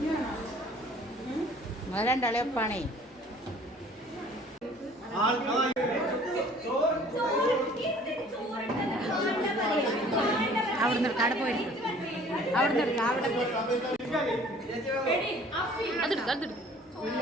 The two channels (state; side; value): normal; both; correlation 0.52